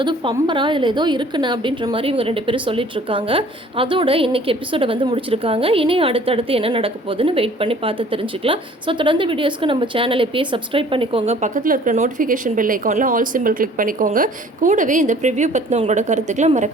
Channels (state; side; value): normal; both; correlation 0.52